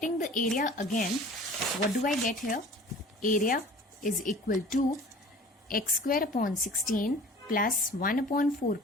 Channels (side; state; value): both; normal; correlation 0.45